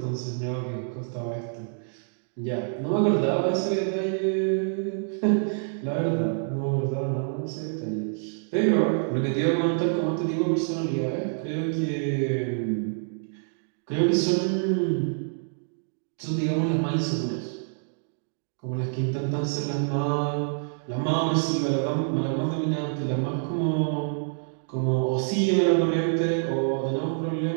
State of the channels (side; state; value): left; silent; digital silence